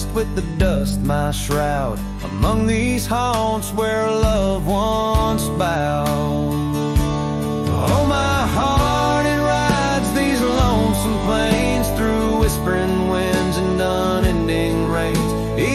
with the dust my shroud, among these haunts where love once bowed. Oh, my heart, it rides these lonesome plains through whispering winds and unending rains.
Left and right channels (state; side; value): identical; both; correlation 1.00